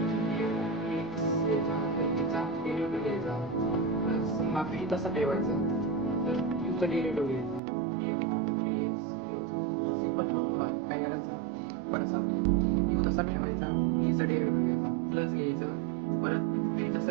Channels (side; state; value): left; drops out; at 7.6 s